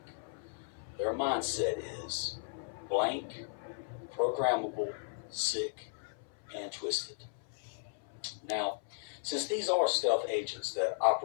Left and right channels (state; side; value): silent; right; 54 dB below the other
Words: Their mindset is blank, programmable, sick, and twisted. Now, since these are stealth agents that